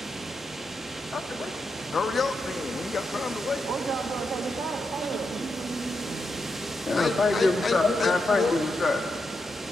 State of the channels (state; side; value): normal; both; correlation 0.85